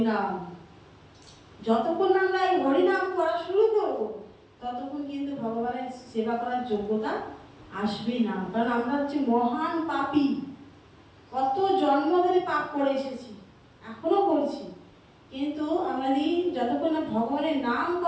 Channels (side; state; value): both; identical; correlation 1.00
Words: যতক্ষণ না আমরা এই হরিনাম করা শুরু করব ততক্ষণ কিন্তু ভগবানের সেবা করার যোগ্যতা আসবেই না। কারণ আমরা হচ্ছে মহান পাপী, কত জন্ম ধরে পাপ করে এসেছি, এখনো করছি, কিন্তু আমরা যতক্ষণ না ভগবানের নাম